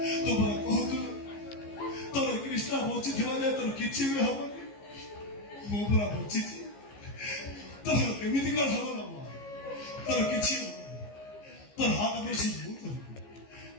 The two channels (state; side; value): late; right; 15 ms